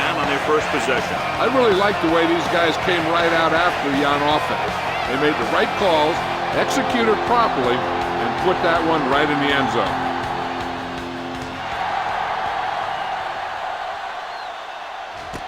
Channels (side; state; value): both; identical; correlation 1.00